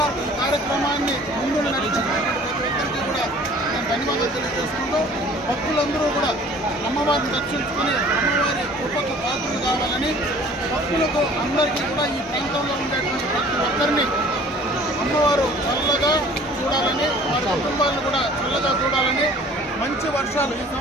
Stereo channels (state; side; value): normal; both; correlation 0.50